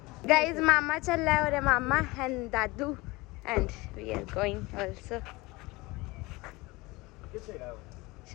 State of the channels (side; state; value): right; quieter; 22.7 dB